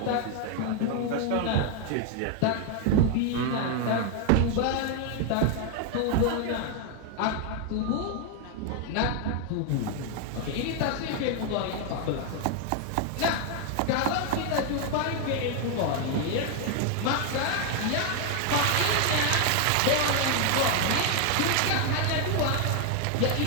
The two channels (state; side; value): different; both; correlation 0.00